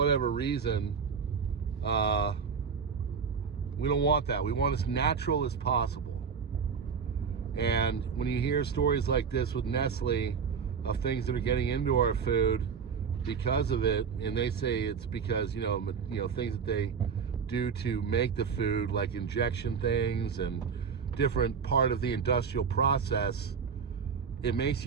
reason. We don't want that. We want as natural as possible. And when you hear stories like this with Nestle of things that are getting into our food because of it, and they say it's because, you know, things that they do to make the food, like injection things and different part of the industrial process, it makes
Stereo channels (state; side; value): quieter; left; 6.2 dB